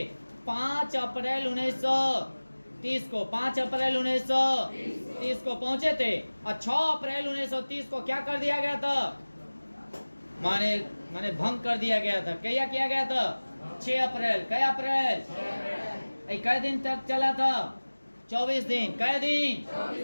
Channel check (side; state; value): both; inverted; correlation -1.00